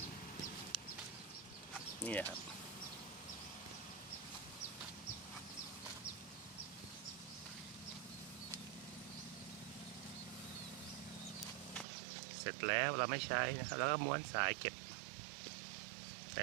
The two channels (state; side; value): drops out; left; at 11.9 s